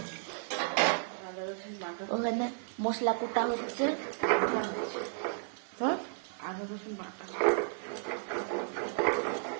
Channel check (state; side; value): silent; left; digital silence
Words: ওখানে মশলা কোটা হচ্ছে। হ্যাঁ, আদা রসুন বাটা।